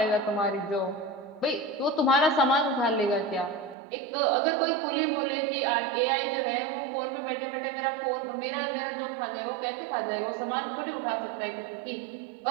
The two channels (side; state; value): left; drops out; at 3.8 s